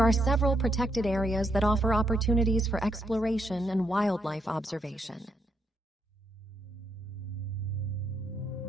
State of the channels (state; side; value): normal; both; correlation 0.78